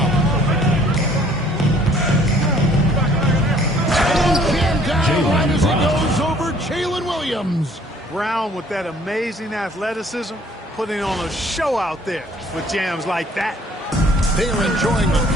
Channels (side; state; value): both; normal; correlation 0.58